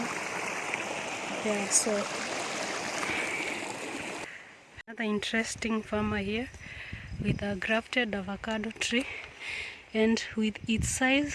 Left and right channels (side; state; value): both; identical; correlation 1.00